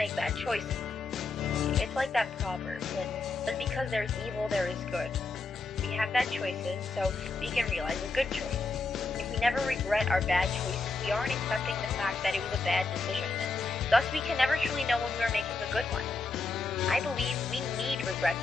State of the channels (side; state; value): right; quieter; 3.7 dB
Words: bad choices. It's like that proverb that says because there's evil, there is good. We have bad choices, so we can realize a good choice. If we never regret our bad choices, we aren't accepting the fact that it was a bad decision, and thus we can never truly know when we are making a good one. I believe we need regrets